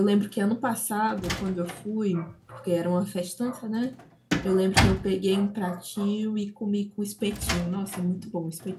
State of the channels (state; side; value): identical; both; correlation 1.00